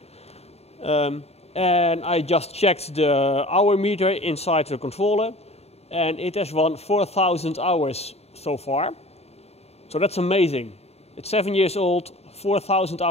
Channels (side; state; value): right; late; 0.30 ms